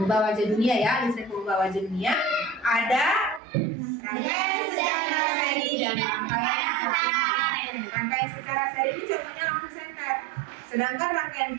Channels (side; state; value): left; drops out; at 3.4 s